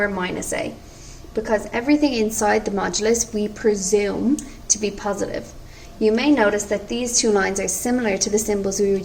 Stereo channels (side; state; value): both; identical; correlation 1.00